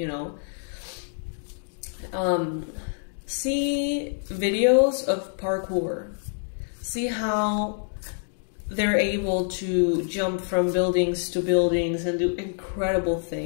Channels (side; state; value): right; silent; digital silence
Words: know? See videos of parkour. See how they're able to jump from buildings to buildings and do incredible